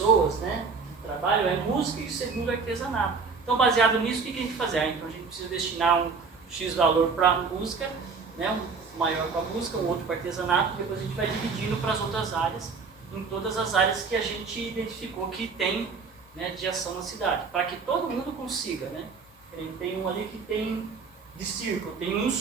né, que trabalham é música e o segundo é artesanato. Então baseado nisso, o que a gente faz? Então a gente precisa destinar um X valor para a música, né, um maior para a música, um outro para artesanato, depois a gente vai dividindo para as outras áreas, em todas as áreas que a gente identificou que tem, né, de ação na cidade, para que todo mundo consiga, né? Tem um ali que tem de circo, tem um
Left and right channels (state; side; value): quieter; left; 5.0 dB